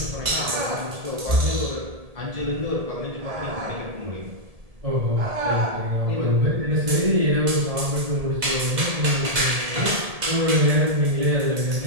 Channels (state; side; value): late; left; 1.7 ms